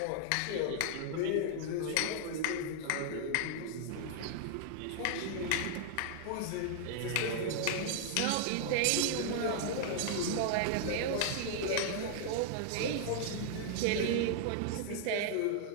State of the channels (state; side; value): different; both; correlation 0.00